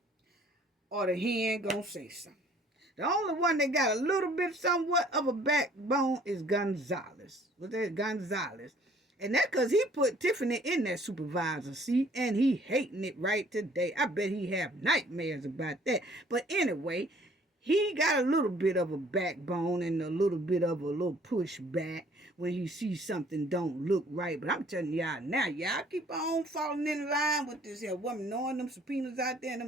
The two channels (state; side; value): normal; both; correlation 0.57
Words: or the hen gonna say something. The only one that got a little bit somewhat of a backbone is Gonzalez. Was that Gonzalez? And that's because he put Tiffany in that supervisor seat, and he hating it right today. I bet he have nightmares about that. But anyway, he got a little bit of a backbone and a little bit of a little pushback when he sees something don't look right. But I'm telling y'all now, y'all keep on falling in line with this here woman, knowing them subpoenas out there